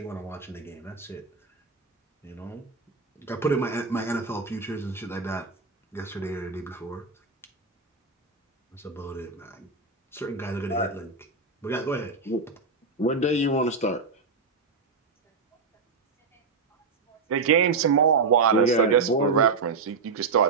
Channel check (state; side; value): quieter; left; 4.5 dB